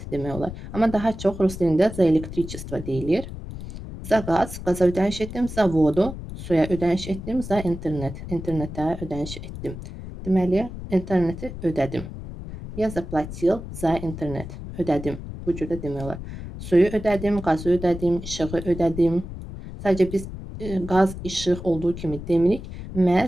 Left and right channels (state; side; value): noise; left; rumble, 10 dB below the sound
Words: demək olar. Amma daha çox rus dilində за электричество deyilir. За gaz, qaza ödəniş etdim. За vodu, suya ödəniş etdim. За internet, internetə ödəniş etdim. Deməli, interneti ödədim. Я заплатил за internet, ödədim. Bu cürdə demək olar. Suyu ödədim, qazı ödədim, işığı ödədim. Sadəcə biz qaz, işıq olduğu kimi demirik.